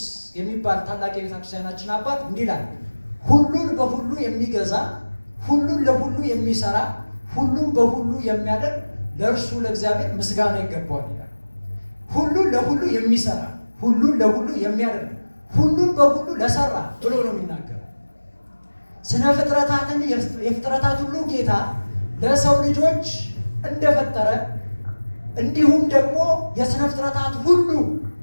የሚባል ታላቅ የቤተክርስቲያናችን አባት እንዲህ ይላል፣ ሁሉን በሁሉ የሚገዛ ሁሉን ለሁሉ የሚሰራ ሁሉን በሁሉ የሚያደርግ ለእርሱ ለእግዚአብሔር ምስጋና ይገባዋል ይላል። ሁሉን ለሁሉ የሚሰራ ሁሉን ለሁሉ የሚያደርግ ሁሉን በሁሉ ለሰራ ብሎ ነው የሚናገረው። ስነ ፍጥረታትን የፍጥረታት ሁሉ ጌታ ለሰው ልጆች እንደፈጠረ እንዲሁም ደግሞ የስነ ፍጥረታት ሁሉ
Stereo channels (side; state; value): both; inverted; correlation -1.00